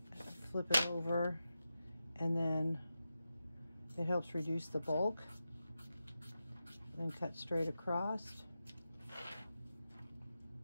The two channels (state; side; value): inverted; both; correlation -0.90